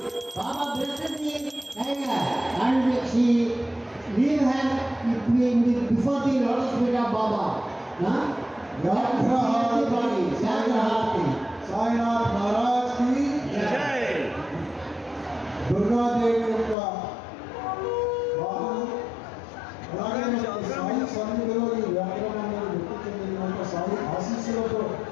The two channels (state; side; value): drops out; right; at 16.8 s